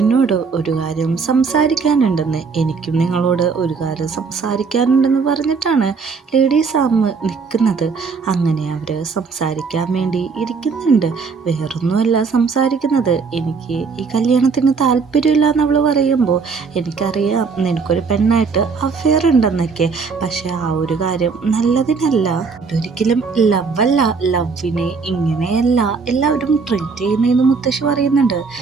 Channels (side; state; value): left; quieter; 5.1 dB